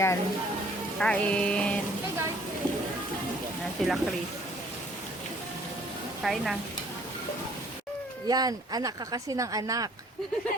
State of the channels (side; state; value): both; normal; correlation 0.58